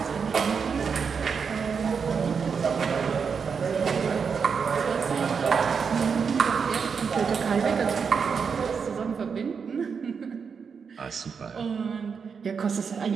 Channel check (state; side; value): quieter; left; 6.0 dB